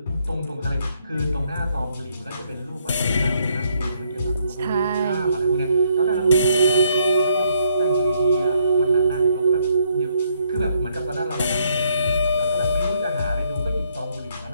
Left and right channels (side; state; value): both; inverted; correlation -0.71